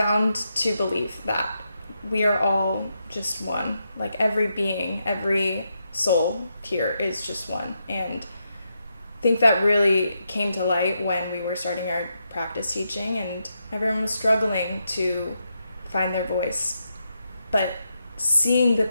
to believe that we are all just one. Like every being, every soul here is just one. And I think that really came to light when we were starting our practice teaching, and everyone was struggling to find their voice. But seeing the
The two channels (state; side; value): inverted; both; correlation -0.83